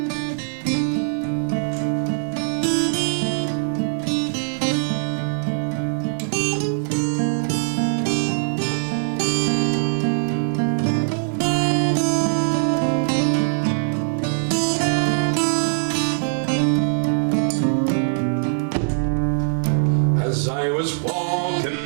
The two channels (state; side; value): silent; left; digital silence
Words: As I was